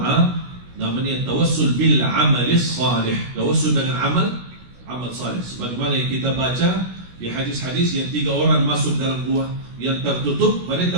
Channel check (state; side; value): late; left; 16 ms